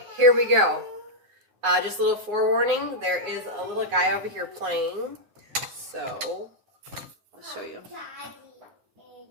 here we go. Just a little forewarning, there is a little guy over here playing. So, I'll show you.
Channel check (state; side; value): late; left; 9.6 ms